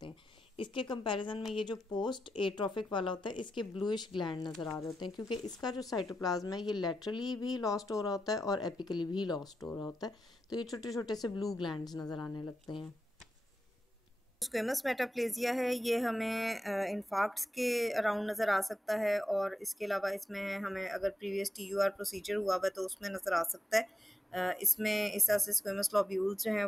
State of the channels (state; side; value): normal; both; correlation 0.88